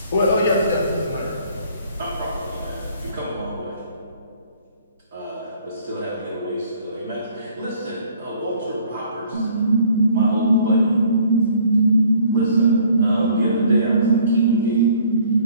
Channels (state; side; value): inverted; both; correlation -0.57